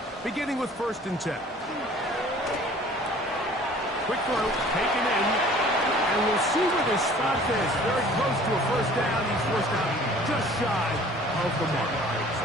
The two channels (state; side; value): normal; both; correlation 0.50